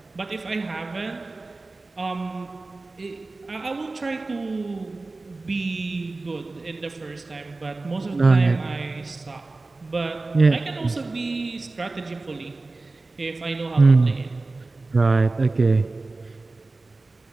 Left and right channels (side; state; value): left; quieter; 3.4 dB